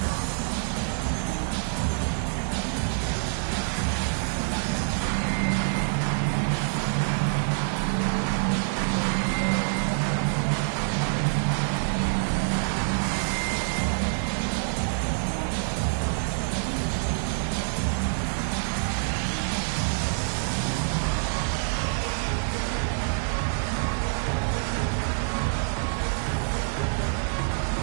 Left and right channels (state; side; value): silent; left; 60 dB below the other